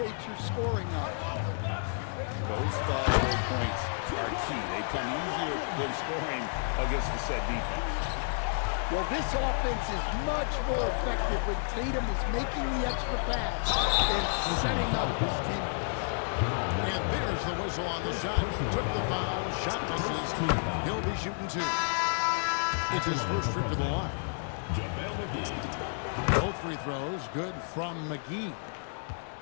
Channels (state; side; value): silent; right; digital silence